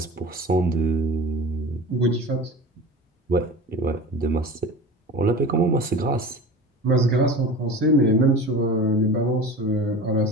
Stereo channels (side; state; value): both; normal; correlation 0.34